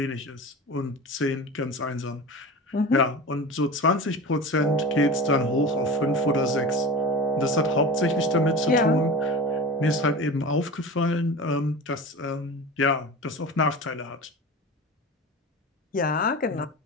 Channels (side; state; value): both; normal; correlation 0.32